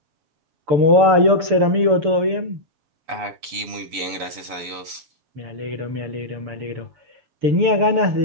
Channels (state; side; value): late; left; 6.8 ms